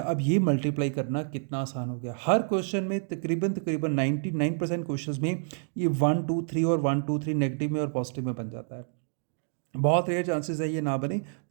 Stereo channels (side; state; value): left; silent; digital silence